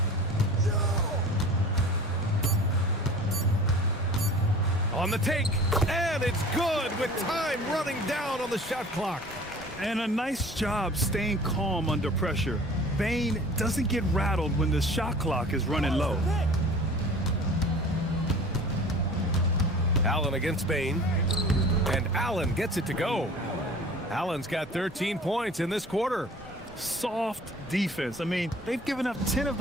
On the take, and it's good with time running down on the shot clock. And a nice job staying calm under pressure. Bain doesn't get rattled when the shot clock is running low. Allen against Bain, and Allen gets it to go. Allen's got 13 points in this quarter. Soft defense. I mean, they've given up 10 of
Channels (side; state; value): both; normal; correlation 0.44